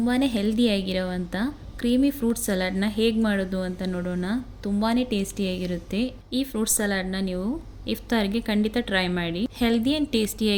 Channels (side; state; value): both; identical; correlation 1.00